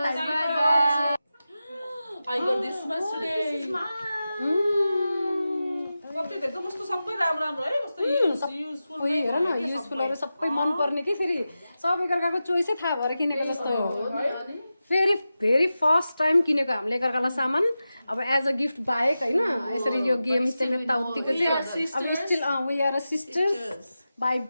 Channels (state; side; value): inverted; both; correlation -0.93